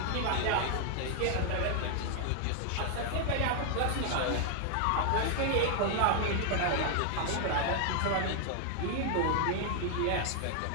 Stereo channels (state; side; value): different; both; correlation 0.00